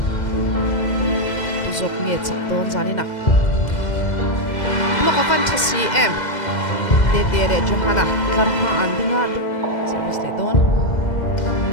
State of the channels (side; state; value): right; late; 2.0 ms